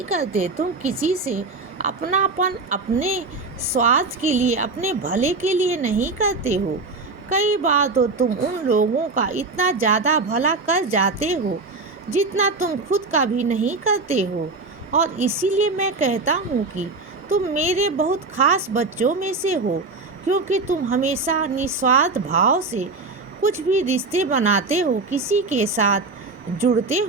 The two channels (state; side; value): quieter; left; 3.8 dB